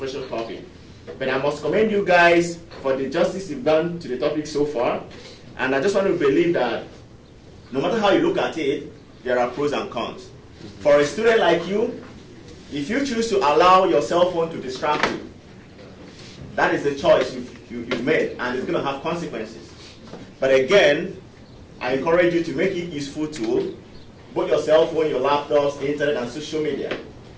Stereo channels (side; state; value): both; identical; correlation 1.00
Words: topic. But I must commend you guys for the justice you've done to the topic so far. And I just want to believe that no matter how you look at it, there are pros and cons. For a student like you, if you choose to allow your cell phone to distract you, that is the choice you've made, and it's going to have consequences. But again, I encourage you to make it a useful tool, both your cell phone, your laptops, internet, and social media.